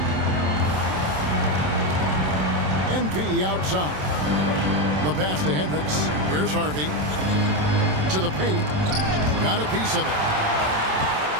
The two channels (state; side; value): late; left; 27 ms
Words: MP outside. The pass to Hendricks. Here's Harvey. To the paint. Got a piece of it.